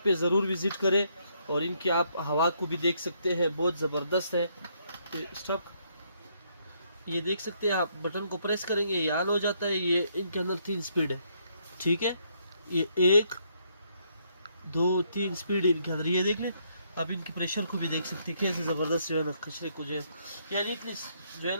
पे ज़रूर विज़िट करें और इनकी आप हवा को भी देख सकते हैं, बहुत ज़बरदस्त है। स्टॉप, ये देख सकते हैं आप, बटन को प्रेस करेंगे ये ऑन हो जाता है। ये इनके अंदर 3 स्पीड है, ठीक है। ये 1 2 3 स्पीड इनके अंदर, ये देख लें आप। इनकी प्रेशर को भी देख सकते हैं कैसे ज़बरदस्त जो है ना कचरे को जो है, यानी इतनी जो है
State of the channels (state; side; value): inverted; both; correlation -0.72